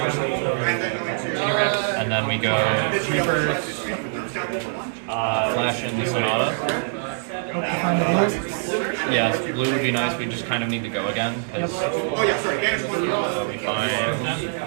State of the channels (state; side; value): silent; left; digital silence